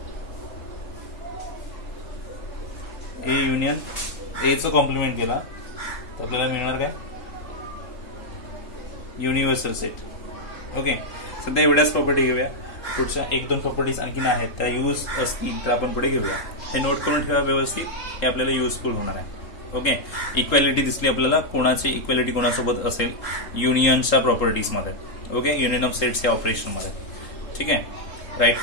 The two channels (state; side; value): late; right; 3.4 ms